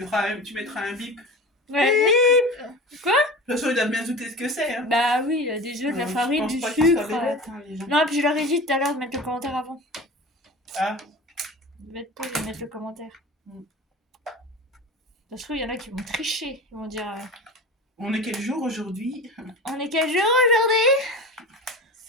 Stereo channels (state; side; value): normal; both; correlation 0.33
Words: un bip. Ouais. Quoi? De toute façon, ils doivent bien douter ce que c'est. Hein. Bah oui, il y a des œufs, de la Je farine, pense du pas qu'ils soient sucre. bêtes, hein, les gens. Non, puis je leur ai dit tout à l'heure de mettre le commentaire avant. Ah, De mettre le commentaire. Ça se trouve, il y en a qui vont tricher. Ils vont dire on est quel jour aujourd'hui? on est quel jour aujourd'hui?